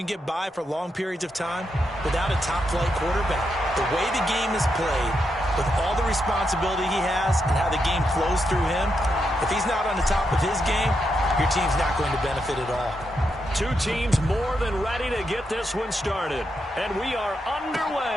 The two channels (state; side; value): normal; both; correlation 0.83